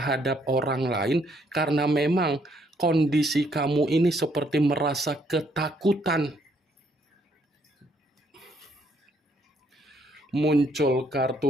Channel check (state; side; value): normal; both; correlation 0.70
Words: orang lain karena memang kondisi kamu ini seperti merasa ketakutan. Muncul